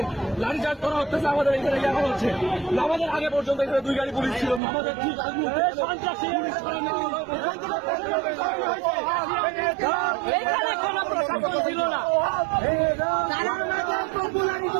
লাঠিচার্জ করা হচ্ছে? আমাদের এখানে দেখা হচ্ছে আমাদের আগে পর্যন্ত এখানে 2 গাড়ি পুলিশ ছিল, আমাদের ঠিক ছিল না।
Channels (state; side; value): drops out; left; at 4.6 s